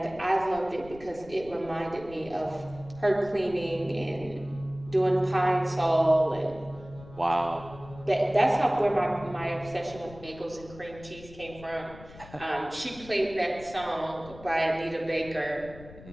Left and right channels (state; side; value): noise; left; rumble, 18 dB below the sound